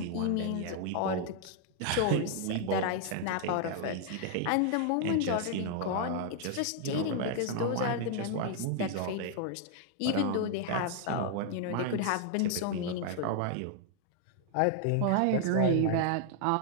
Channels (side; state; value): both; different; correlation 0.00